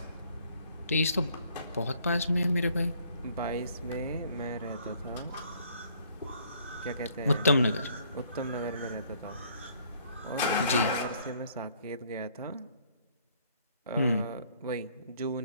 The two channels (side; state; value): both; inverted; correlation -0.63